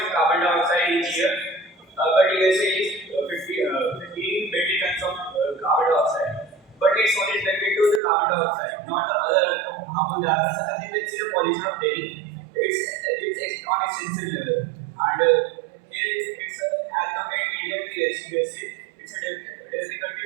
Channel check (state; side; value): drops out; left; at 8.0 s